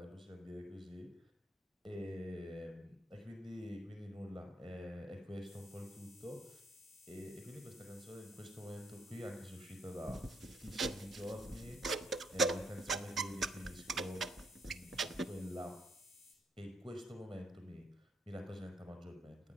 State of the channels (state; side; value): normal; both; correlation 0.73